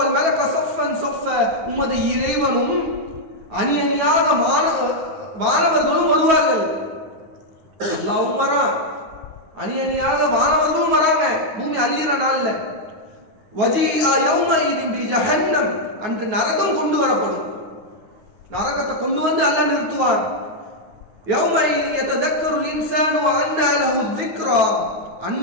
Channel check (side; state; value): left; late; 9.4 ms